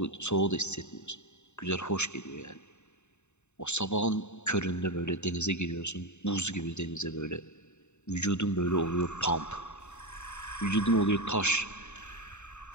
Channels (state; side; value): late; right; 0.82 ms